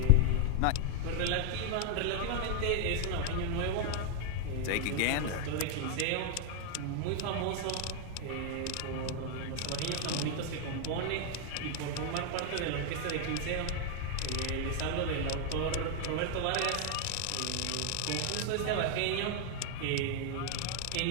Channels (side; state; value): both; different; correlation 0.00